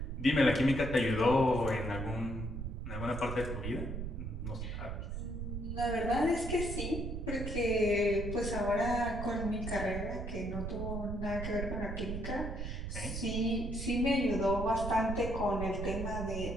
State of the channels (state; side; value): noise; right; rumble, 5 dB below the sound